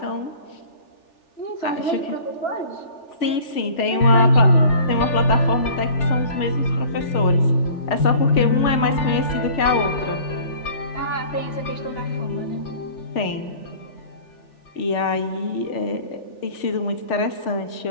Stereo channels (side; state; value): right; late; 3.4 ms